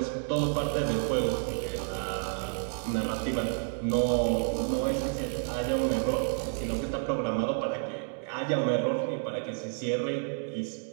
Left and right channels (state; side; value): silent; left; digital silence